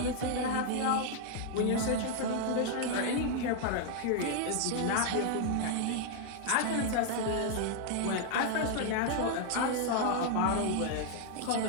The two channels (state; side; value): different; both; correlation 0.00